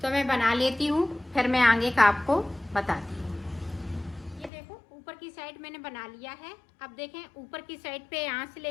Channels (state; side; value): drops out; right; at 4.5 s